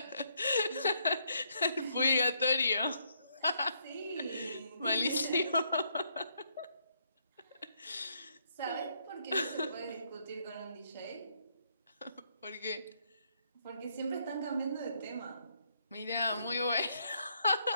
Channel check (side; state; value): both; inverted; correlation -0.73